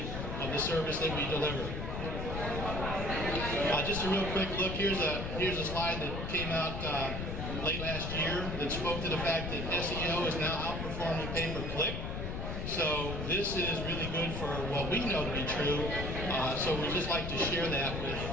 of the service that we deliver. Just a real quick look, here's a slide that came out late last year that spoke to the fact that SEO is now outperforming pay-per-click. So this is really good for what we know to be true. So we just like to share that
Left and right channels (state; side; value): noise; left; rumble, 4 dB below the sound